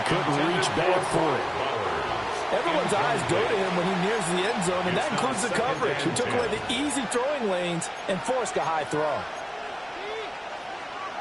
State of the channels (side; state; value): both; identical; correlation 1.00